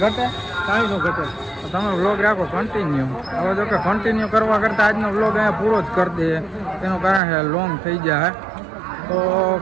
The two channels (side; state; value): left; drops out; at 7.2 s